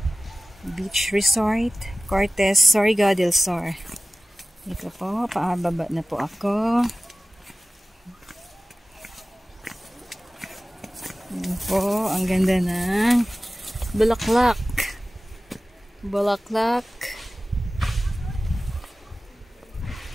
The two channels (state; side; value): normal; both; correlation 0.97